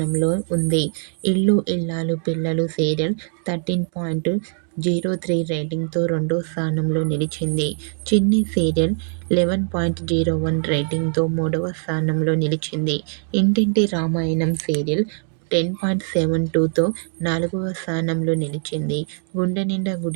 ఉంది. ఇల్లు ఇల్లాలు పిల్లలు సీరియల్ 13.03 రేటింగ్తో రెండో స్థానంలో నిలిచింది. చిన్ని సీరియల్ 11.01 రేటింగ్తో మూడవ స్థానంలో నిలిచింది. ఇంటింటి రామాయణం సీరియల్ 10.72తో నాలుగవ స్థానంలో నిలిచింది. గుండె నిండా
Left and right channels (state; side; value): silent; left; 56 dB below the other